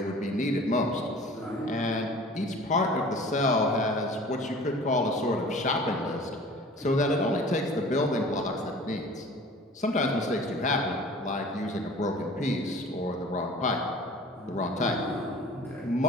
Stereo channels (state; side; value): normal; both; correlation 0.45